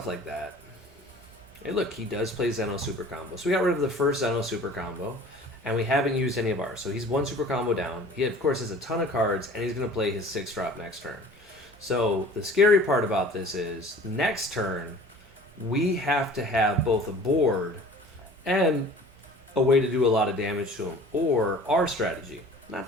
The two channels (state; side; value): normal; both; correlation 0.46